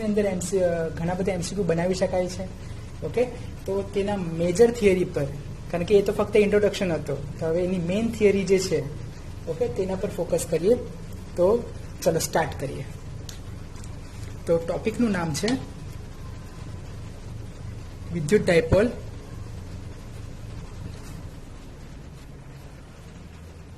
અંદર ઘણા બધા એમસીક્યુ બનાવી શકાય છે. ઓકે, તો તેના મેજર થિયરી પર, કારણ કે એ તો ફક્ત ઇન્ટ્રોડક્શન હતો, તો હવે એની મેઇન થિયરી જે છે, ઓકે, તેના પર ફોકસ કરીએ. તો ચલો સ્ટાર્ટ કરીએ. તો ટોપિકનું નામ છે વિદ્યુત ડાયપોલ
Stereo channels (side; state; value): both; identical; correlation 1.00